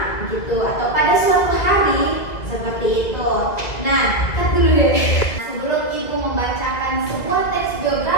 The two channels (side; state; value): right; late; 2.2 ms